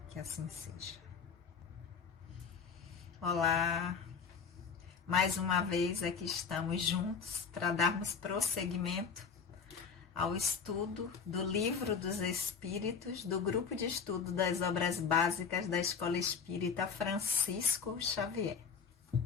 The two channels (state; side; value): quieter; right; 6.1 dB